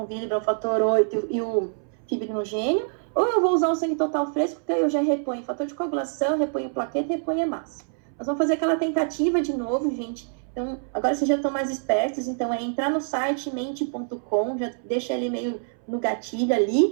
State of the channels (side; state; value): left; silent; 61 dB below the other